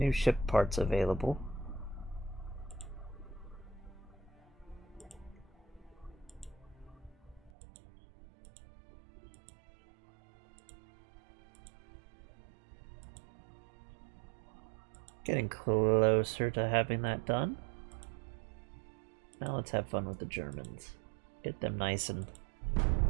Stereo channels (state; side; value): drops out; left; at 7.5 s